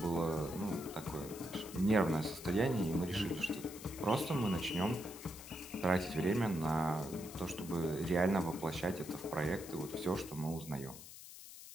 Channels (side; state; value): left; noise; hiss, 14 dB below the sound